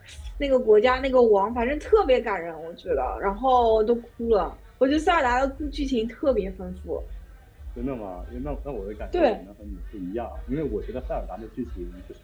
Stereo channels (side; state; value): both; identical; correlation 1.00